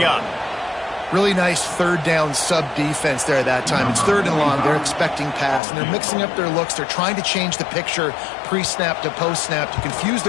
up. Really nice third down sub-defense there that time. It's third and long. They're expecting pass, and they're mixing up their looks. They're trying to change the picture pre-snap to post-snap to confuse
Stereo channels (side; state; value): right; drops out; at 5.6 s